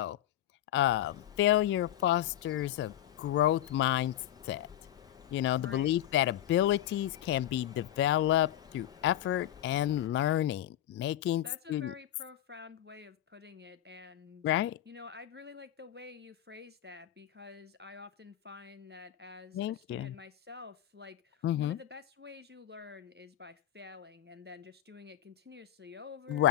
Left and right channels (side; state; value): right; quieter; 12.4 dB